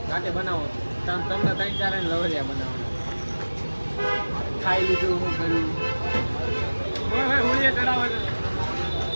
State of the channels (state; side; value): inverted; both; correlation -1.00